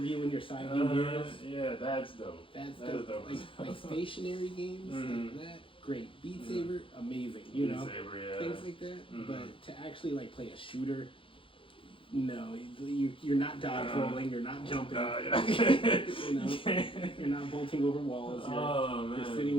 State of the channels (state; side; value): late; right; 0.25 ms